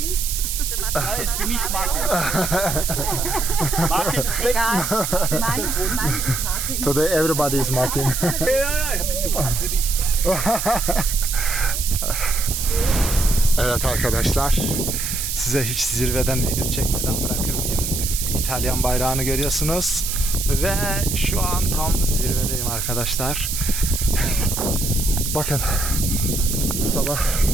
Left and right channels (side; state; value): right; noise; hiss, 3 dB below the sound